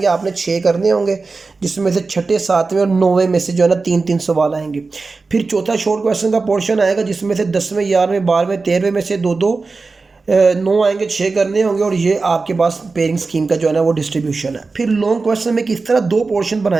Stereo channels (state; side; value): quieter; left; 4.0 dB